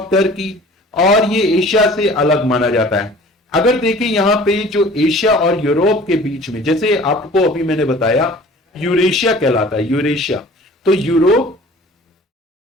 टर्की, और ये एशिया से अलग माना जाता है। अगर देखें यहां पे जो एशिया और यूरोप के बीच में, जैसे आपको अभी मैंने बताया यूरेशिया कहलाता है, यूरेशिया। तो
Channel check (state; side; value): normal; both; correlation 0.47